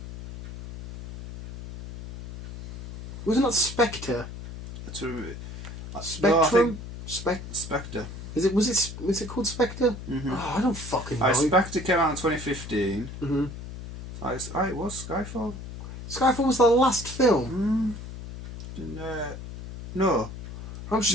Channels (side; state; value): left; noise; hum, 10 dB below the sound